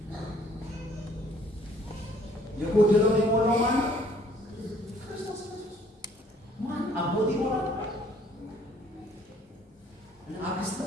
የጎደለውን የሞላው ማን ነው? ክርስቶስ ኢየሱስ። ማን አቦት ይሞላል? አክስት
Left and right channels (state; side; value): normal; both; correlation 0.59